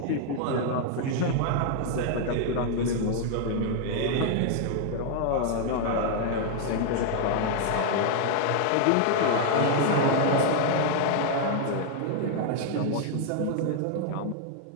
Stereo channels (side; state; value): both; different; correlation 0.00